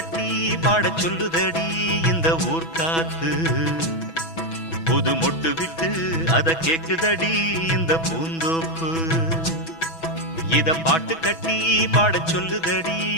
பாட சொல்லுதடி இந்த ஊர் காத்து புது மொட்டு விட்டு அத கேக்குதடி இந்த பூந்தோப்பு இத பாட்டு கட்டி பாட சொல்லுதடி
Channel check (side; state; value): right; late; 6.1 ms